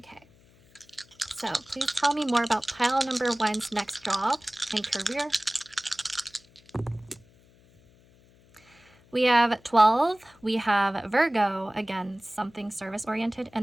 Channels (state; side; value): noise; left; hum, 29 dB below the sound